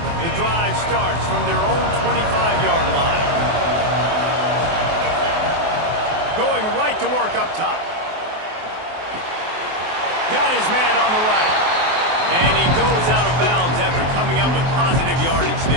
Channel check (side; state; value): left; late; 23 ms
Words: Drive starts from their own 25-yard line. Going right to work up top. Got his man on the right. And he goes out of bounds after coming up with positive yardage